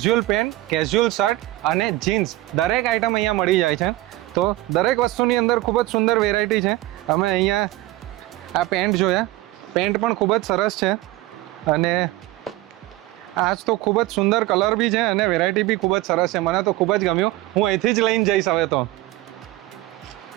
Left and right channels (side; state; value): left; quieter; 17.7 dB